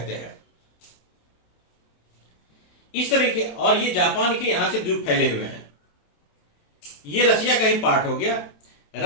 हैं। इस तरीके, और ये जापान के यहां से द्वीप फैले हुए हैं। ये रसिया का ही पार्ट हो गया।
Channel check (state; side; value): late; right; 27 ms